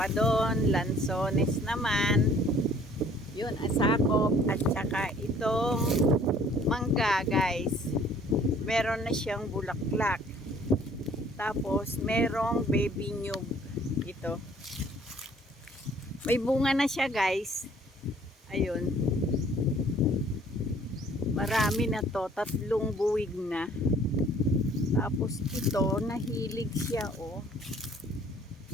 doon, lansones naman. Yun, asakop. At saka itong mangga guys. Meron na siyang bulaklak. Tapos merong baby nyug. Ito. May bunga na siya guys. Ayun. Marami na to. 3 buwig na. Tapos ito, nahilig siya oh.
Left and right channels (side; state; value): both; normal; correlation 0.56